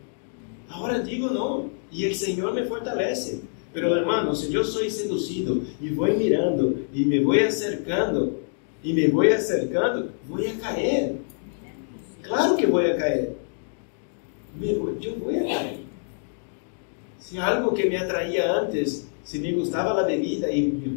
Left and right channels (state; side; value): silent; right; digital silence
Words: Ahora digo no. Y el Señor me fortalece. Pero hermanos, si yo soy seducido y voy mirando y me voy acercando, voy a caer. Claro que voy a caer. Yo voy a caer. Si algo que me atraía antes, si me gustaba la bebida y me